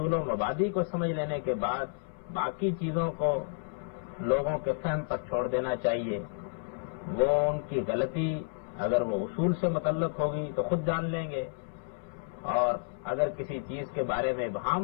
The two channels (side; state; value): right; silent; 57 dB below the other